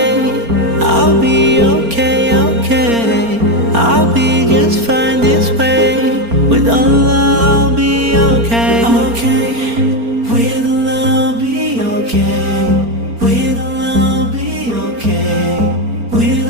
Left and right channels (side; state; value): left; late; 4.3 ms